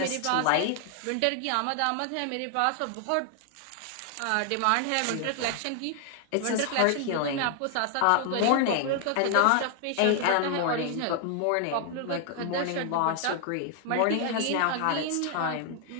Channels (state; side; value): different; both; correlation 0.00